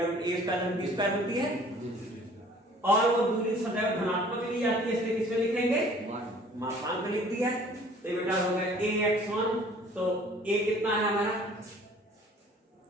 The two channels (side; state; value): both; normal; correlation 0.52